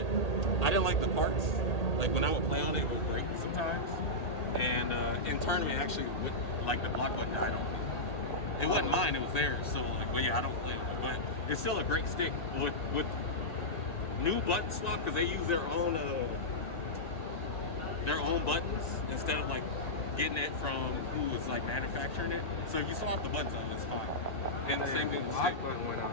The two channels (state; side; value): late; right; 1.8 ms